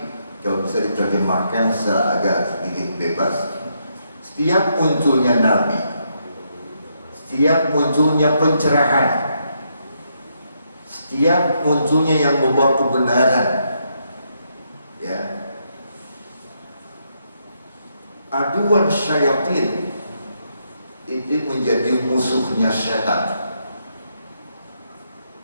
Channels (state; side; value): inverted; both; correlation -0.78